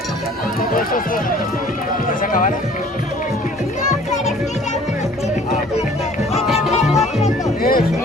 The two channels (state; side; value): normal; both; correlation 0.53